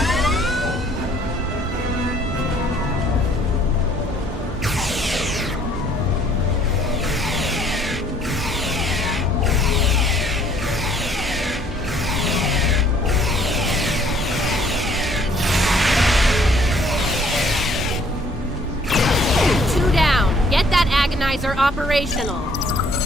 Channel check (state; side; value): normal; both; correlation 0.60